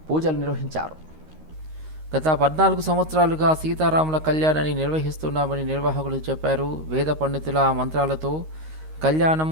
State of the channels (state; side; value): late; left; 13 ms